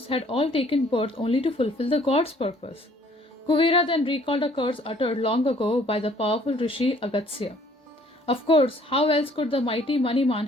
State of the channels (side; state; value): both; normal; correlation 0.59